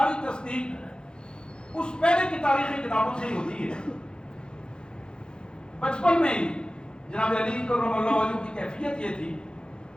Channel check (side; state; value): right; late; 0.049 ms